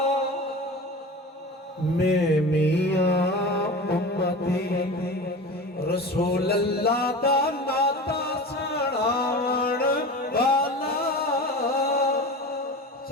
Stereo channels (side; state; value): both; normal; correlation 0.32